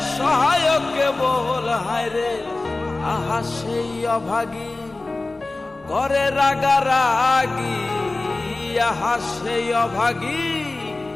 সহায়ক কেবল। হায়রে আহা সেই অভাগী করে রাগারাগি, আহা সেই অভাগী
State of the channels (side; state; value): right; quieter; 3.1 dB